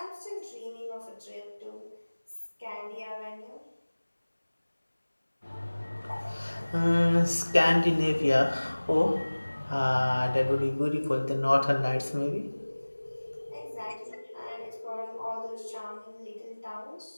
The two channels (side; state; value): both; inverted; correlation -1.00